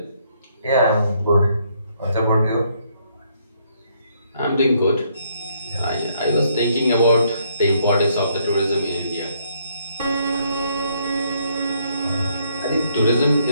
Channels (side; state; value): both; inverted; correlation -0.71